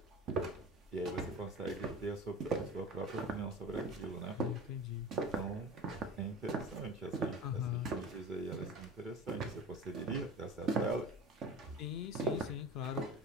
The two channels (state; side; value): normal; both; correlation 0.35